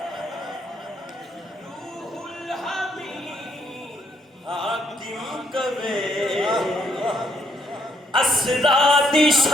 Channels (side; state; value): both; normal; correlation 0.72